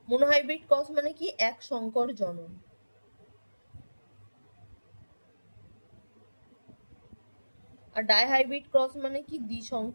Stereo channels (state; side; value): inverted; both; correlation -1.00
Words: মোনোহাইব্রিড ক্রস মানে কি? এক সংকর জনন। আর ডাইহাইব্রিড ক্রস মানে কি?